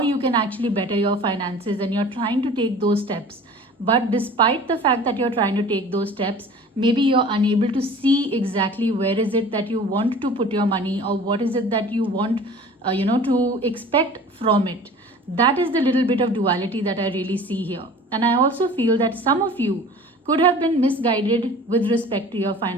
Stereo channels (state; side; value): normal; both; correlation 0.43